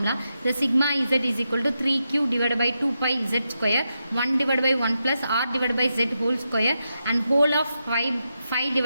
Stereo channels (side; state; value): both; inverted; correlation -0.86